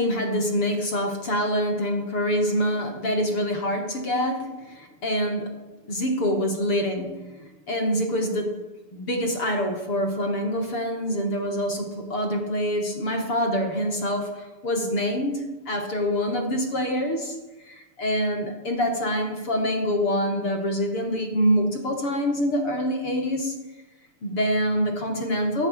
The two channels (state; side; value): late; right; 6.9 ms